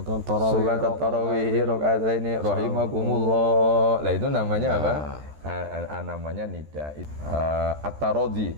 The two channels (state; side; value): late; left; 14 ms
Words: tarawih rakaataini rahimakumullah. Lah itu namanya apa? Namanya nida. At-tarodhi